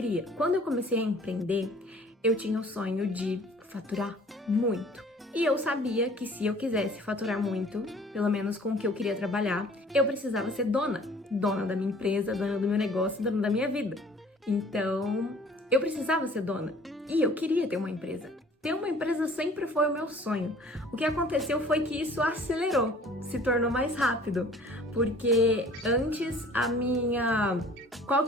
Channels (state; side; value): normal; both; correlation 0.51